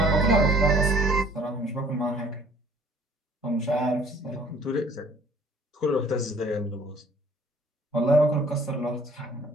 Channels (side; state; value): both; normal; correlation 0.55